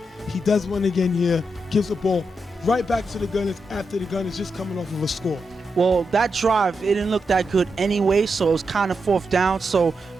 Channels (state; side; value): normal; both; correlation 0.86